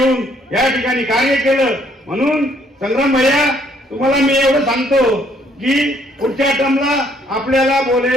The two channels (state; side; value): normal; both; correlation 0.66